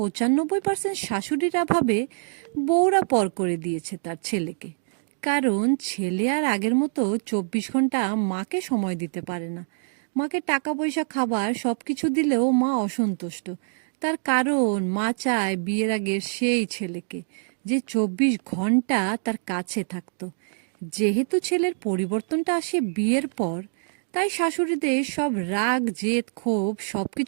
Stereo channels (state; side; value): silent; left; digital silence